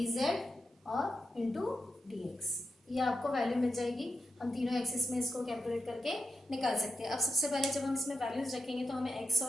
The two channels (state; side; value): normal; both; correlation 0.88